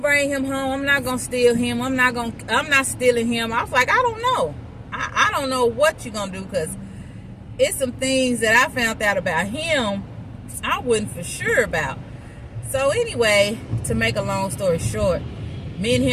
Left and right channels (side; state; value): both; identical; correlation 1.00